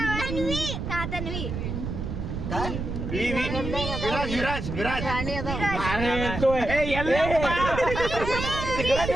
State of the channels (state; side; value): noise; right; rumble, 5 dB below the sound